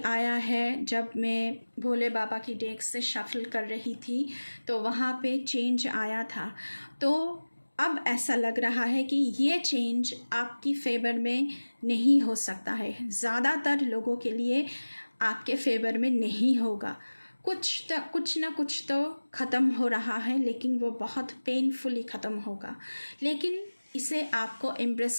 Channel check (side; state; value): both; inverted; correlation -1.00